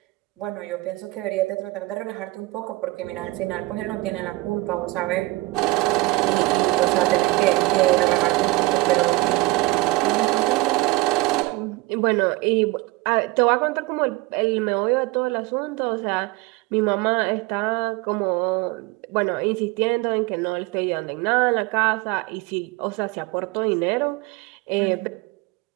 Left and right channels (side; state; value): left; quieter; 21.4 dB